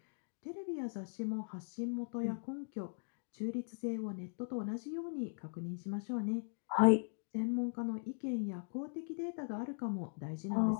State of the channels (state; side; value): silent; right; digital silence